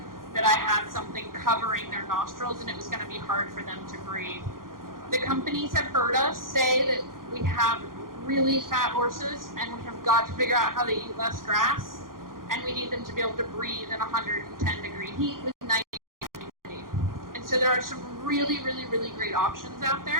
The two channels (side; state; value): left; late; 0.91 ms